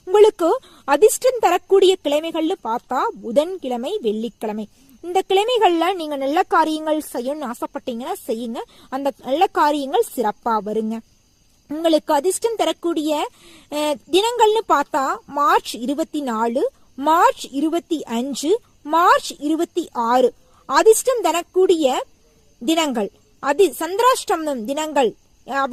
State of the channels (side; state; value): both; identical; correlation 1.00